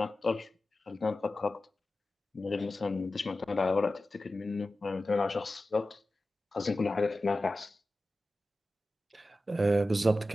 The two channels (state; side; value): normal; both; correlation 0.94